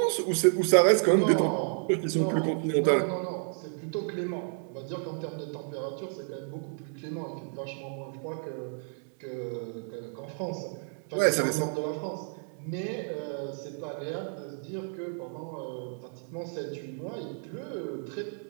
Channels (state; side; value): silent; left; 55 dB below the other